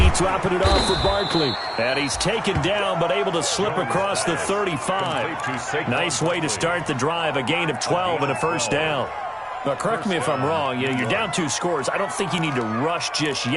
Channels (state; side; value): identical; both; correlation 1.00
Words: dropping it off for Barkley. And he's taken down, but able to slip across the 35. Nice way to start the drive, a gain of 12 and a first down. Now, correct me if I'm wrong. You're down 2 scores. I don't think you need to rush just